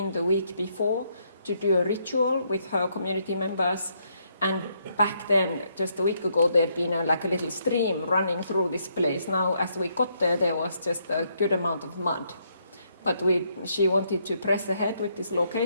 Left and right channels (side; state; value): both; inverted; correlation -0.74